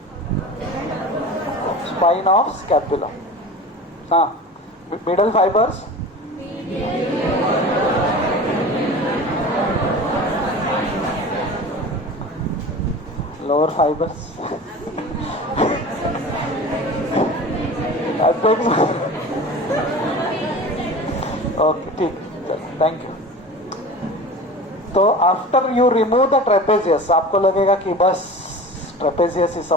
spine of scapula. Middle fibers, lower fibers. I think okay, ठीक. Thank you. तो after you remove the trapezius, आपको लगेगा कि बस ट्रेपेजियस ही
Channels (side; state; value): both; normal; correlation 0.36